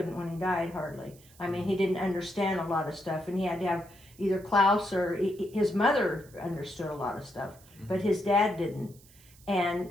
when he died, hardly. I mean, he didn't understand a lot of stuff, and he had to have either Klaus or his mother understood a lot of stuff, but his dad didn't. And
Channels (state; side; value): noise; right; hiss, 25 dB below the sound